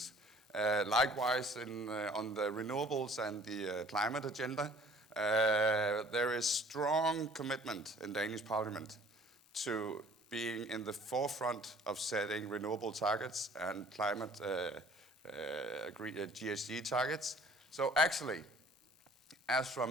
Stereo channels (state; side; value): normal; both; correlation 0.53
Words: Likewise, on the renewables and the climate agenda, there is strong commitment in Danish Parliament to being in the forefront of setting renewable targets and climate GHG targets. So actually, as